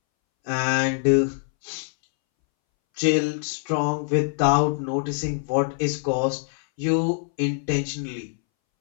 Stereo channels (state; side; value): silent; right; 62 dB below the other